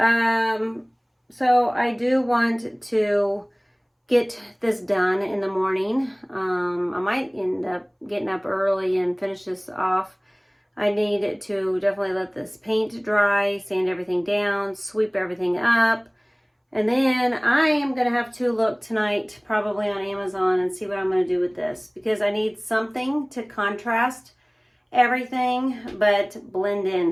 I do want to get this done in the morning. I might end up getting up early and finish this off. I need to definitely let this paint dry, sand everything down, sweep everything up. And then I am going to have to look tonight probably on Amazon and see what I'm going to do with this, because I need something to contrast everything but blend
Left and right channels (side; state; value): both; identical; correlation 1.00